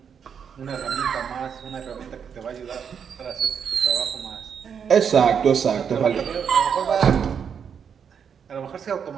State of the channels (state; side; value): quieter; left; 7.3 dB